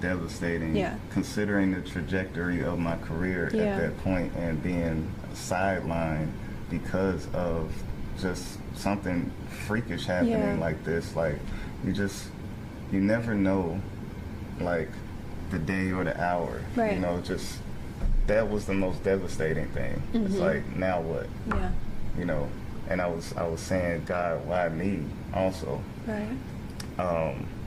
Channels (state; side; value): identical; both; correlation 1.00